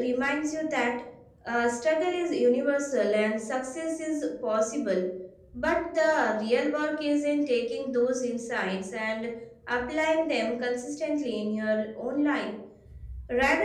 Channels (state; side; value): identical; both; correlation 1.00